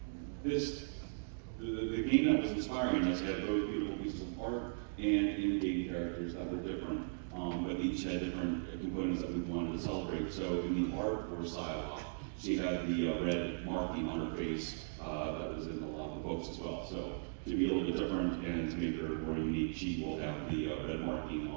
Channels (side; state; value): left; silent; digital silence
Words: this. The game that was inspiring us had both beautiful pieces of art and in-game characters that were different, but each had different components that we wanted to celebrate. So in the art for Psylocke, she had the red marking on her face that was in a lot of the books as well. So to be a little bit different and to make her more unique, she will have the red marking